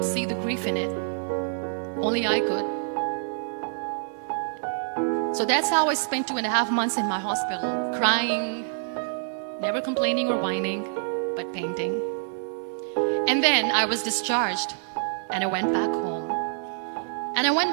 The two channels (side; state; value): left; silent; digital silence